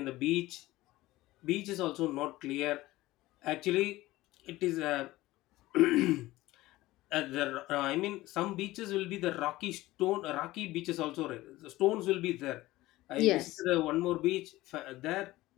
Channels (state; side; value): quieter; right; 17.7 dB